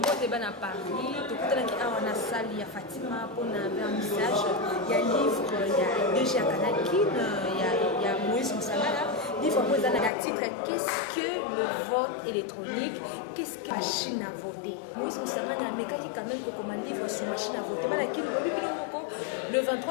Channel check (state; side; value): drops out; right; at 10.1 s